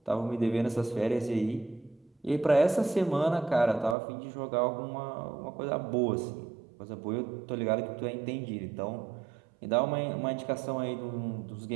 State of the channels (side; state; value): left; drops out; at 4.0 s